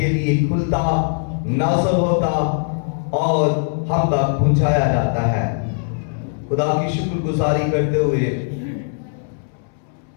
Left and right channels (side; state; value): right; silent; 66 dB below the other